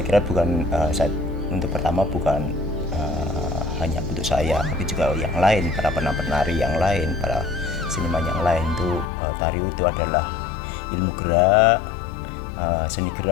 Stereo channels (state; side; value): drops out; right; at 9.1 s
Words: kira bukan untuk pertama bukan hanya untuk saya, tapi juga yang lain, para penari yang lain, para seniman yang lain itu tari itu adalah ilmu gerak, seni